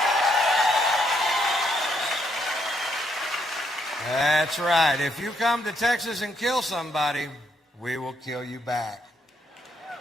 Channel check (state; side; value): normal; both; correlation 0.74